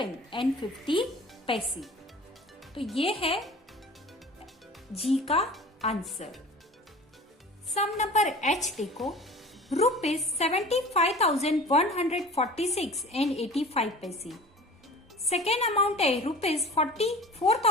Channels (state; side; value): normal; both; correlation 0.41